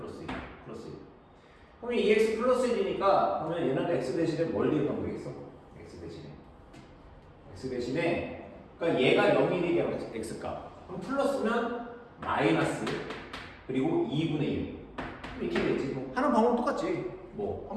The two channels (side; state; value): both; identical; correlation 1.00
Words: 1. 플러스 1. 그러면 2x 플러스 1이니까 그러면 얘는 x 대신에 뭘 대입하면 되겠어? x 대신에 그러니까 얘가 0이 되게 x값. 그럼 플러스면 마이너스 그리고 2분의 1 이렇게 되겠지. 뭐 하는 방법 똑같지. 뭐